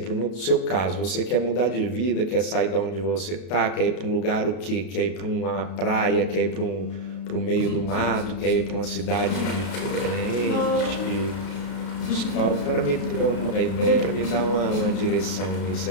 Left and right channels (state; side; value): late; right; 32 ms